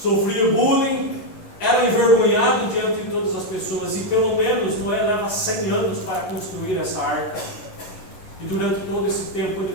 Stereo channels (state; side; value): late; right; 11 ms